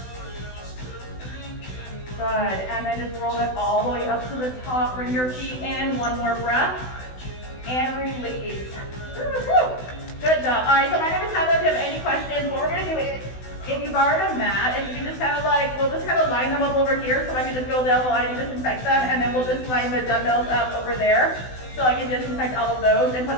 Good, and then just roll it all the way up to the top. Bring your feet in, one more breath, and release. Good job. All right, so my name is Heather. If you have any questions, what we're gonna do is, if you borrowed a mat, and you can just kind of like, we'll just kind of line them up over here so I can just go down the line and disinfect them, and then we'll just line the dumbbells up over there so I can disinfect all of those and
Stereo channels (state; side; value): late; right; 16 ms